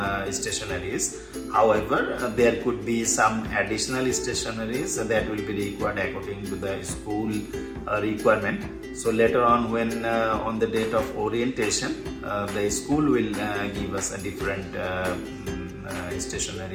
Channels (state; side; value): identical; both; correlation 1.00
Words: However, there could be some additional stationeries that will be required according to the school requirement. So later on, when on the date of orientation, the school will give us a different